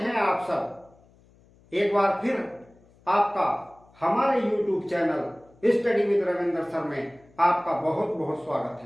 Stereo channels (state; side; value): noise; left; hum, 29 dB below the sound